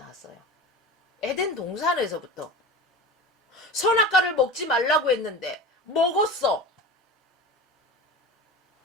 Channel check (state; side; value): normal; both; correlation 0.31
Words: 에덴 동산에서부터. 선악과를 먹지 말라고 했는데 먹었어.